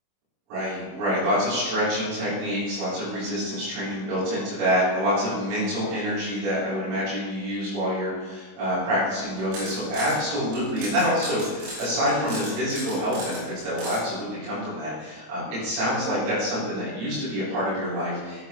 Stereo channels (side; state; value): left; late; 26 ms